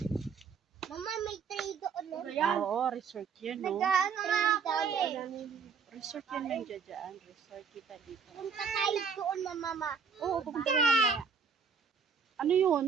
Mama, may tray doon. Oo, resort yun, no? Nag-ano nga ako eh. Resort yun nandiyan dyan. Resort kita dito. Punta tayo doon, mama. Oo, pupunta na mamaya. Ano yun?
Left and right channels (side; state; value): left; quieter; 6.1 dB